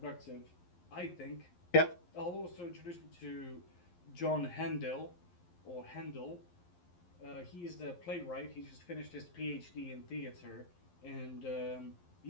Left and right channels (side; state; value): right; late; 11 ms